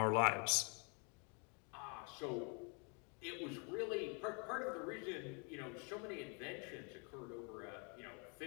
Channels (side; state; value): right; quieter; 36.0 dB